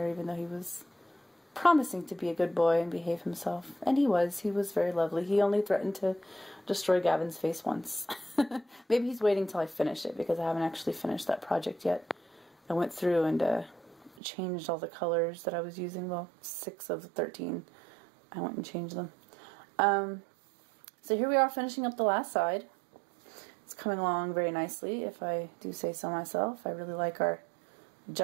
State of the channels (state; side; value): drops out; left; at 14.2 s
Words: even though he was promising to be a good boy and behave himself. And he was very lovely. He only threatened to destroy Gavin's face once. Maybe he's waiting till I finish it, because I haven't actually finished that project yet. I went through and changed all the colors that I was using. Well, 6 of the 13. I went and changed them. So here we are finishing up the last side. It's coming along very nicely, if I do say so myself. I really like our